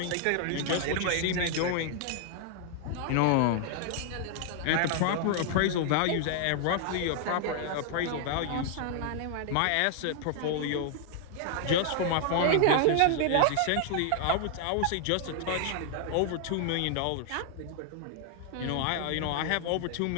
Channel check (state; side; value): different; both; correlation 0.00